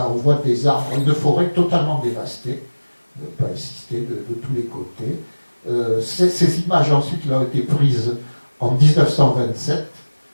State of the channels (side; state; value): both; inverted; correlation -1.00